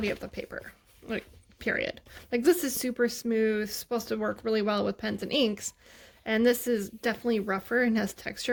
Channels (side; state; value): both; identical; correlation 1.00